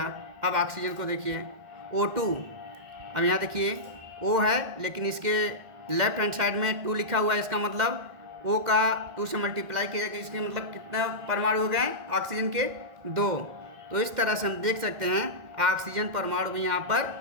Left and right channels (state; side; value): late; left; 2.1 ms